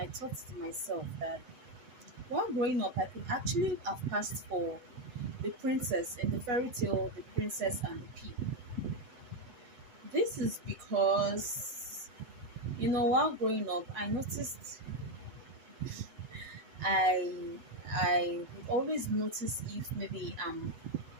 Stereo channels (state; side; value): late; left; 8.0 ms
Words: thought to myself that while growing up I could actually have passed for the princess in the fairy tale The Princess and the Pea. This is because while growing up I noticed I would always notice if maybe I'm